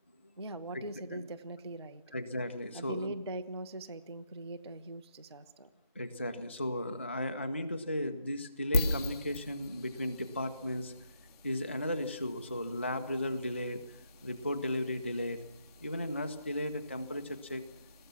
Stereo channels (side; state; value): both; inverted; correlation -0.77